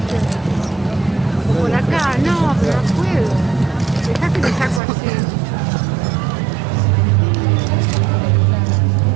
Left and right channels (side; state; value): left; drops out; at 4.8 s